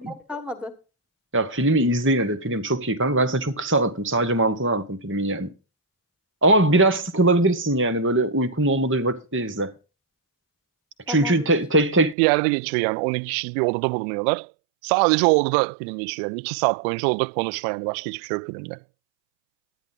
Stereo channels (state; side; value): drops out; left; at 12.2 s